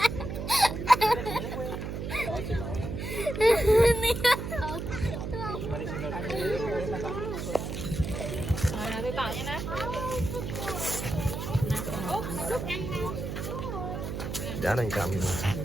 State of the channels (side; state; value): right; noise; hum, 5 dB below the sound